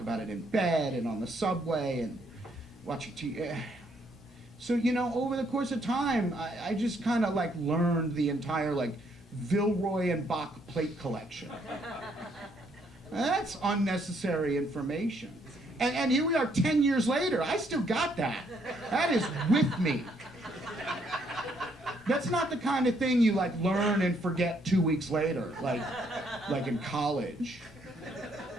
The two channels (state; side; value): normal; both; correlation 0.70